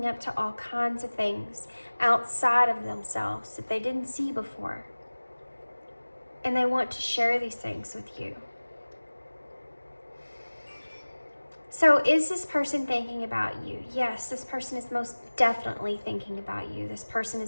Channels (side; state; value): both; inverted; correlation -1.00